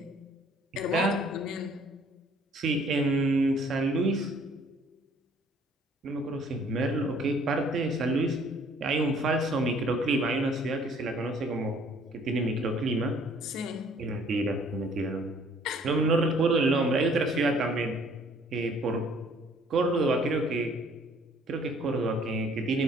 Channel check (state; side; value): normal; both; correlation 0.58